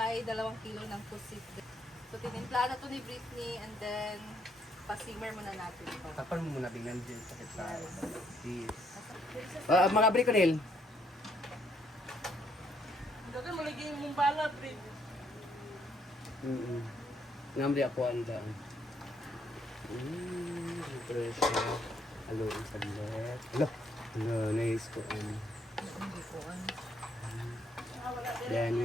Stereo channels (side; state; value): both; normal; correlation 0.71